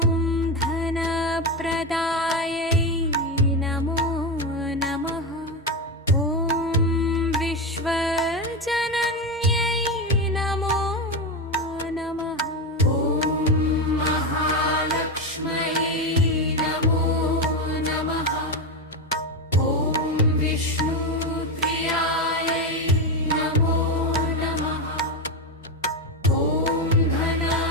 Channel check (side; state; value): both; normal; correlation 0.14